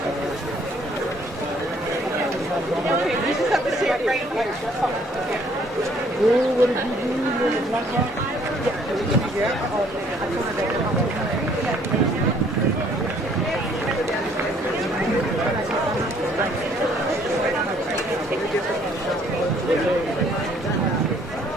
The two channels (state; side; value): normal; both; correlation 0.62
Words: You just have to see it right here.